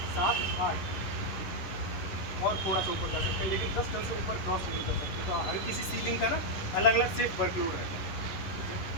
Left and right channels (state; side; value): late; right; 10 ms